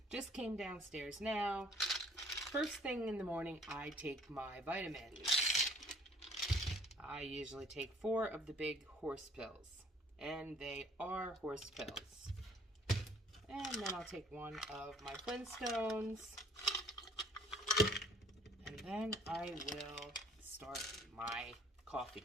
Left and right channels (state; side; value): normal; both; correlation 0.55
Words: Just came downstairs now. First thing in the morning, I take my vitamins. I usually take 4 of the big horse pills, and they are horse pills. And then I'll take 1 of my Flintstones, and then I will start my coffee.